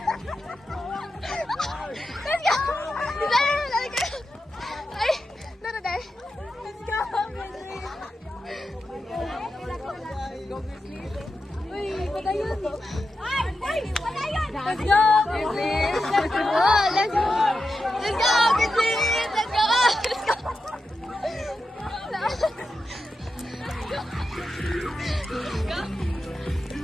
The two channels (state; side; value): normal; both; correlation 0.89